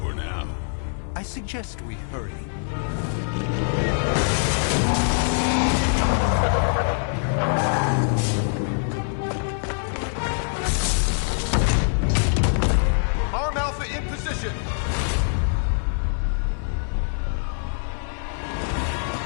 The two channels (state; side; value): silent; right; 63 dB below the other